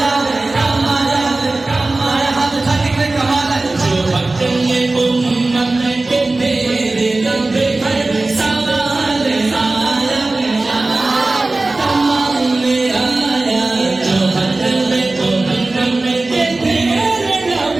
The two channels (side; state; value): left; quieter; 3.1 dB